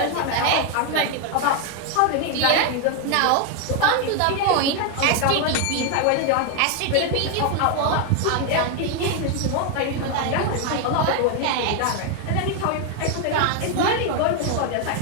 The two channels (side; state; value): both; different; correlation 0.01